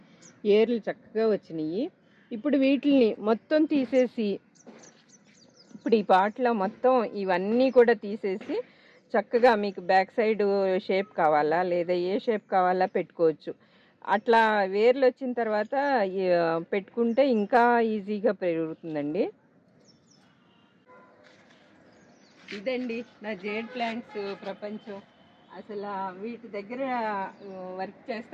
ఏర్లు చక్కగా వచ్చినాయి. ఇప్పుడు వీటిని మొత్తం తీసేసి, ఇప్పుడు ఈ పాట్లో మొత్తం ఇవన్నీ కూడా తీసేసి చక్కగా మీకు బ్యాక్ సైడ్ షేప్ కావాలా లేదా ఏ షేప్ కావాలా పెట్టుకోవచ్చు. అట్లా వేర్లు వచ్చిన తర్వాత పెట్టుకుంటే ఇంకా ఈజీగా పెరుగుతుందండి. ఇదండి నా జేడ్ ప్లాంట్స్ ప్రపంచం. అసలు వీటి దగ్గర వర్క్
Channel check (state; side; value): identical; both; correlation 1.00